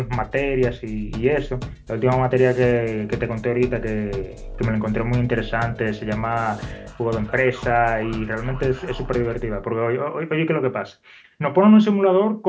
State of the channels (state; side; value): identical; both; correlation 1.00